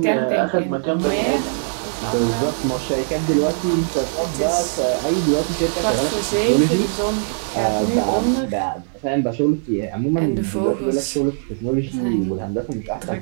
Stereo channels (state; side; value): silent; left; digital silence